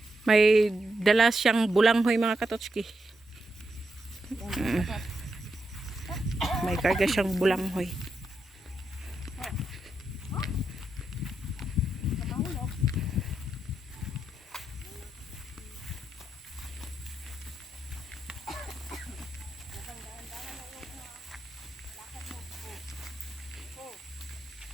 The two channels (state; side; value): normal; both; correlation 0.84